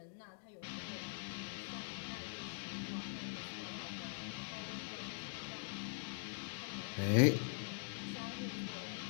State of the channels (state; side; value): silent; right; digital silence